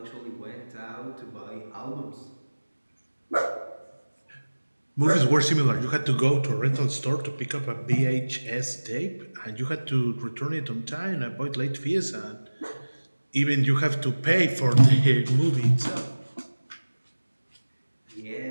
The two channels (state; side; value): inverted; both; correlation -1.00